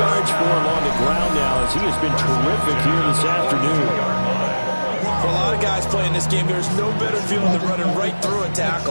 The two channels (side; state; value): both; inverted; correlation -1.00